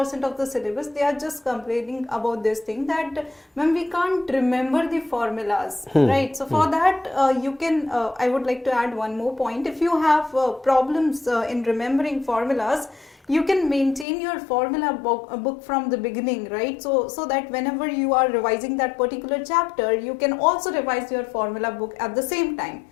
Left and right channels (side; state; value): right; drops out; at 14.1 s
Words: of the syllabus, they are just complaining about this thing that ma'am, we can't remember the formulas, right? So for that you can, I would like to add one more point. If you have problems in remembering formulas, you can maintain your formula book from the beginning, right? So that whenever you are revising that particular chapter, you can also revise your formula book at the same time,